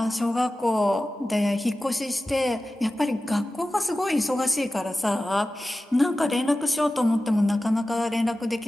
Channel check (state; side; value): normal; both; correlation 0.95